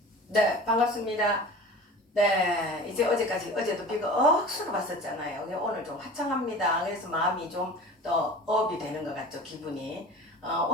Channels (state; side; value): normal; both; correlation 0.39